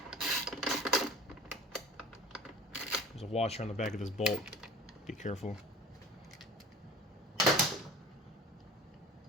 There's a washer on the back of this bolt. Be careful.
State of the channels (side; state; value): both; normal; correlation 0.41